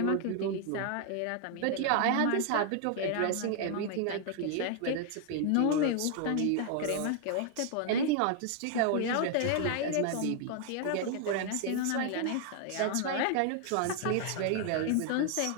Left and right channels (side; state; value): both; different; correlation 0.00